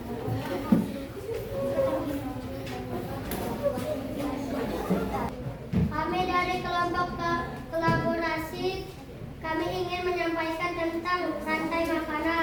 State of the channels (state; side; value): identical; both; correlation 1.00